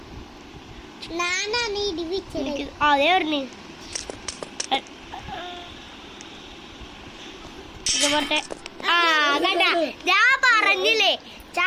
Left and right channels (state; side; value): identical; both; correlation 1.00